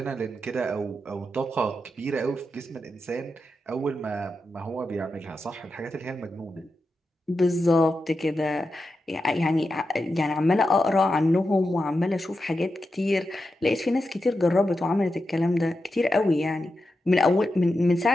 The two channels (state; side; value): normal; both; correlation 0.89